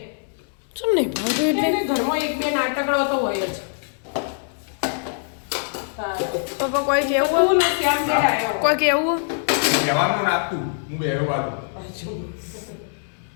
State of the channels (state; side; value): silent; right; digital silence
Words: ચમ નહીં ભાવતું એટલે એટલે ઘરમાં એક બે નાટકડો તો હોય જ. પપ્પા કોઈ કેવું તું નથી આમ બેઠા કોઈ કેવું કહેવાનું નાખતું હું બેરો બાજુ